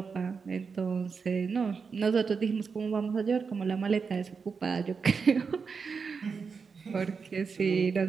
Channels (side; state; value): left; quieter; 5.4 dB